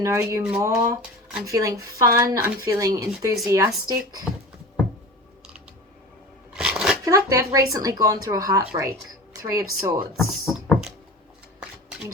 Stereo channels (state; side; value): normal; both; correlation 0.34